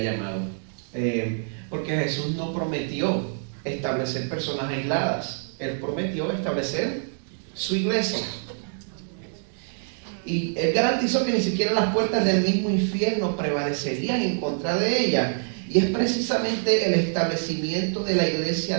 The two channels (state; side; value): silent; left; 61 dB below the other